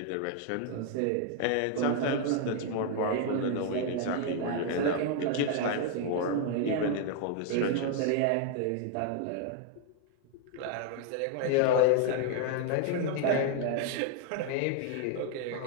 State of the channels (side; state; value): both; different; correlation 0.00